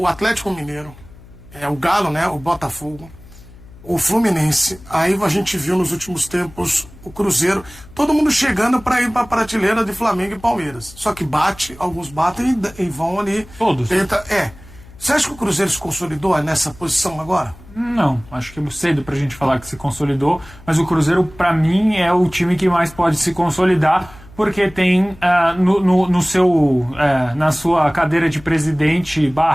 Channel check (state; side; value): noise; left; hum, 21 dB below the sound